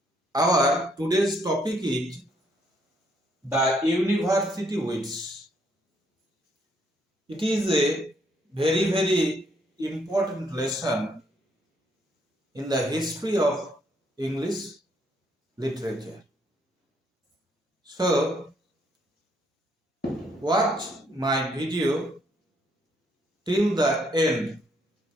Our today's topic is the University Wits. It is a very important lesson in the history of English literature. So, watch my video till the end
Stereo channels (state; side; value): normal; both; correlation 0.70